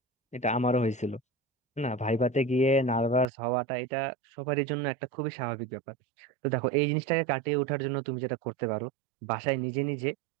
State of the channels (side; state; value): left; drops out; at 3.2 s